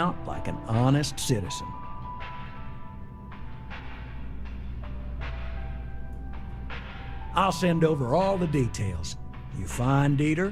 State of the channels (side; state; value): both; identical; correlation 1.00